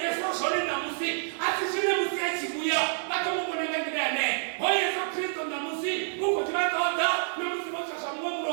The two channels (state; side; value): silent; left; digital silence